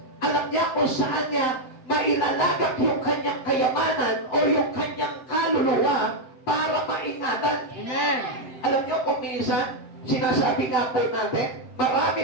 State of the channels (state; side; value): late; right; 7.8 ms